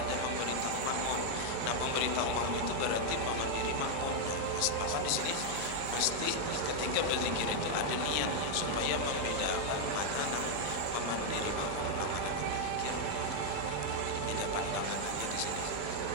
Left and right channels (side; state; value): both; different; correlation 0.00